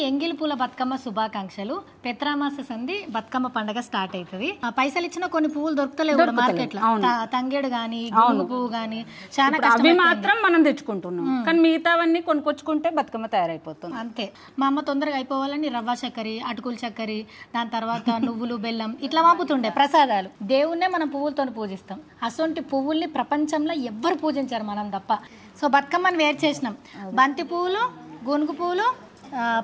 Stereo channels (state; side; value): identical; both; correlation 1.00